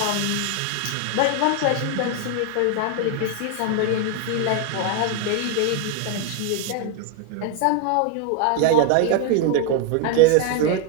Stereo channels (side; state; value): both; different; correlation 0.01